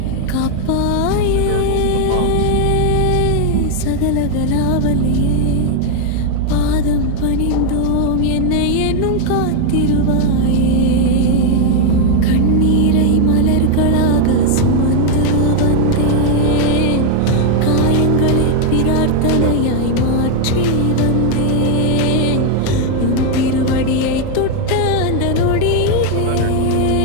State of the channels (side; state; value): both; different; correlation 0.00